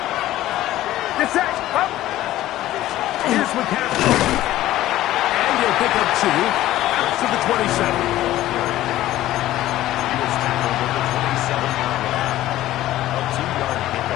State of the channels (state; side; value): quieter; right; 14.7 dB